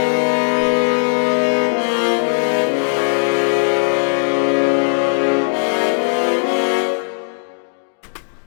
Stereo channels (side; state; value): right; silent; digital silence